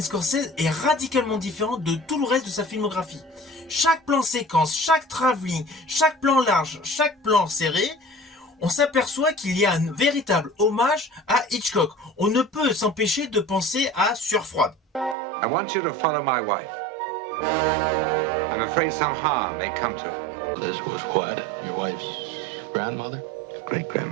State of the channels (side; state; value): left; drops out; at 15.2 s